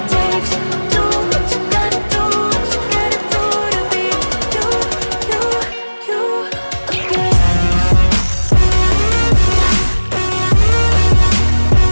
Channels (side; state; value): both; inverted; correlation -1.00